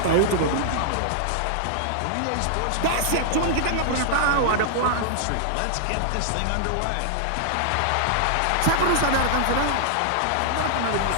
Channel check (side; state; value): both; different; correlation -0.01